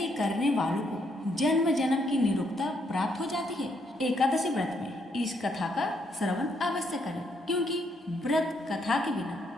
करने वालों को जन्म जन्म की निरुक्ता प्राप्त हो जाती है। एकादशी व्रत में इस कथा का श्रवण अवश्य करें, क्योंकि व्रत कथा के बिना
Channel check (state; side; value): normal; both; correlation 0.74